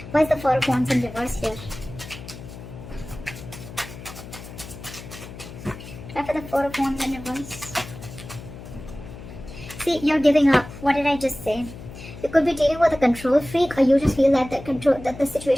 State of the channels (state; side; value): noise; left; hum, 14 dB below the sound